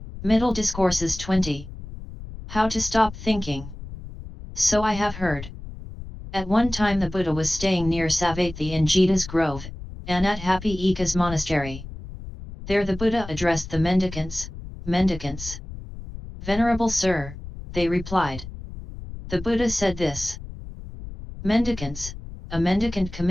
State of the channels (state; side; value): noise; left; rumble, 12 dB below the sound